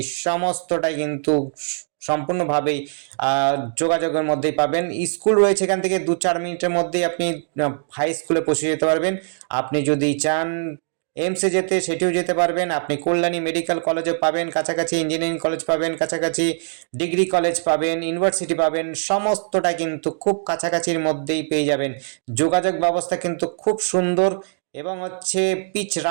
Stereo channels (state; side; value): silent; left; digital silence